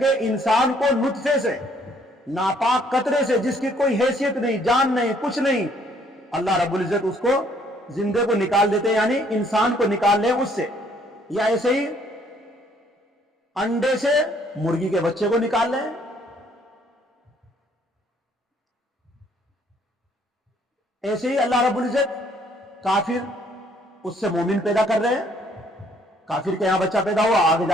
इंसान को नुत्फे से, नापाक कतरे से, जिसकी कोई हैसियत नहीं, जान नहीं, कुछ नहीं, अल्लाह रब्बुल इज्जत उसको जिंदे को निकाल देते हैं, यानी इंसान को निकाल ले उससे। या ऐसे ही अंडे से मुर्गी के बच्चे को निकाल लें। ऐसे ही अल्लाह रब्बुल इज्जत काफिर, उससे मोमिन पैदा कर रहे हैं। काफिर के यहां बच्चा पैदा हुआ, आगे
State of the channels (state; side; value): normal; both; correlation 0.63